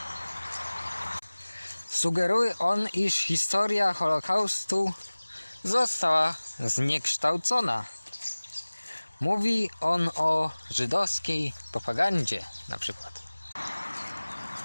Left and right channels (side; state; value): both; inverted; correlation -1.00